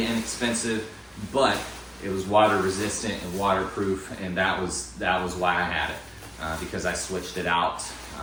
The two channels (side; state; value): both; identical; correlation 1.00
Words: inexpensive, but it was water resistant and waterproof, and that was why I had it, because I switched it out